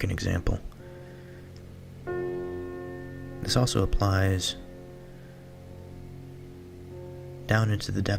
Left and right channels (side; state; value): both; identical; correlation 1.00